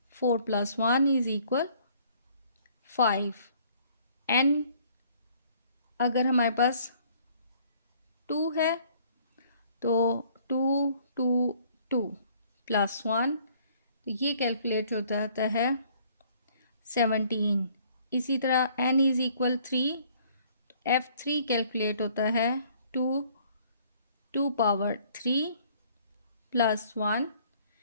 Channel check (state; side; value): inverted; both; correlation -0.59